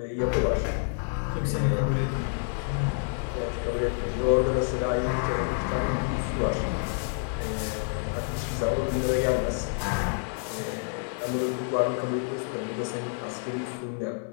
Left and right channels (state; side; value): silent; right; 59 dB below the other